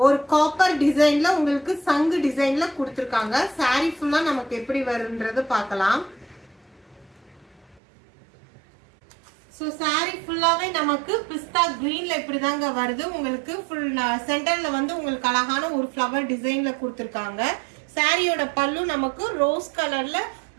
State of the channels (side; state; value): left; drops out; at 7.8 s